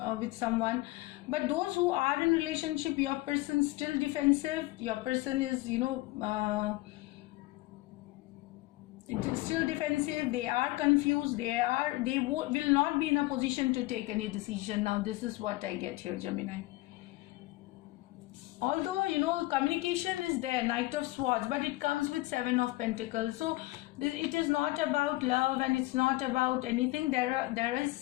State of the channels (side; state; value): right; quieter; 19.7 dB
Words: with someone. But those who are in relationship, your person still defensive. Your person is it is still defensive. They are confused. They will not be in a position to take any decision. Now this is what I get here, Gemini. Although communication is there, Knight of Swords, but it comes with Seven of Pentacles. So it is not about love, and it's not about anything. There